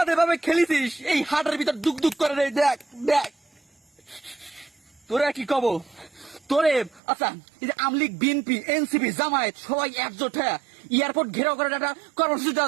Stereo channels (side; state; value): left; drops out; at 7.0 s